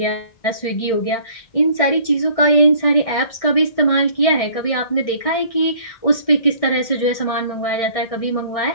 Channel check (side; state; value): right; late; 1.6 ms